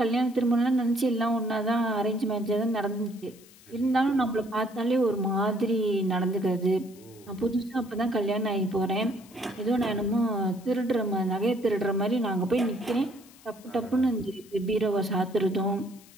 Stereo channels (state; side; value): noise; left; hiss, 24 dB below the sound